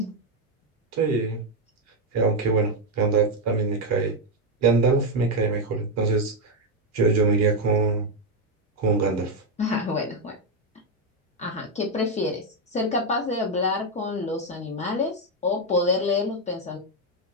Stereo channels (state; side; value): normal; both; correlation 0.04